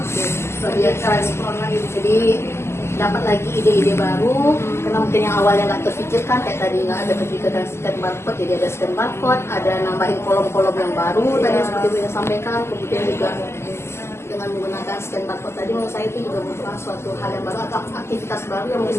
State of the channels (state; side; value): late; right; 0.13 ms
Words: Lebih eksplor lagi. Jadi dapat lagi ide-ide baru, karena mungkin yang awalnya nggak terpikirkan kayak tadi nggak ada terpikirkan scan barcode, jadi ada scan barcode, ada nambahin kolom-kolom yang baru tadi seperti Bu yang sampaikan. Kemudian juga dengan menggunakan scan barcode tadi menurut saya itu juga merupakan suatu hal yang baru atau aktivitas baru yang